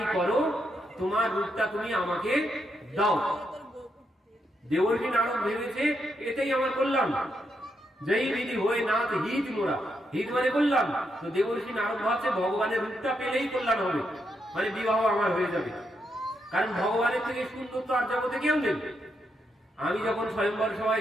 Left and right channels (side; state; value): both; normal; correlation 0.81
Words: করো, তোমার রূপটা তুমি আমাকে দাও। দেবর্ষি নারদ ভেবেছে এটাই আমার কল্যাণ, জয়ী বিধি হয়ে নাথ হিত মোরা, হিত মানে কল্যাণ। তো দেবর্ষি নারদ ভাবছে ভগবানের রূপটা পেলেই কল্যাণ হবে, মানে বিবাহ আমার হয়ে যাবে। কারণ ভগবানের থেকে সুন্দর তো আর জগতে কেউ নেই। আমি যখন স্বয়ম্বর